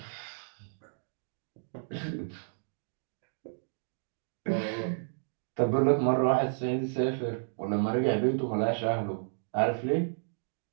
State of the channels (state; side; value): silent; left; digital silence